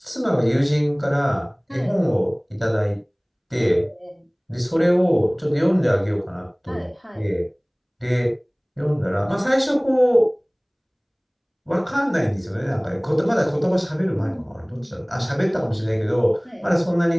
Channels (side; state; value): both; identical; correlation 1.00